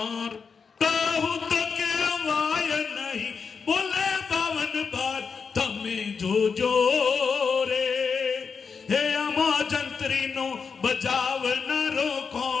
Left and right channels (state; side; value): quieter; right; 5.6 dB